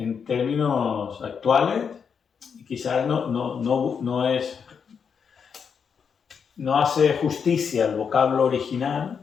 términos actuales, quizás no hace justicia al vocablo original,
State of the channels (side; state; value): right; quieter; 6.6 dB